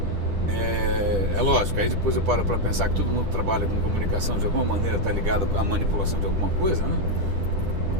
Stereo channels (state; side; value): late; left; 10 ms